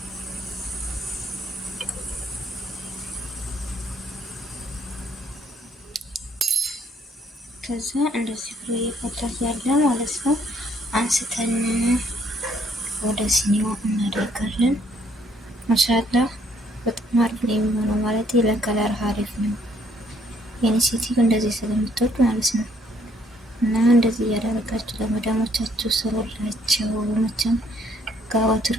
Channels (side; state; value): both; normal; correlation 0.66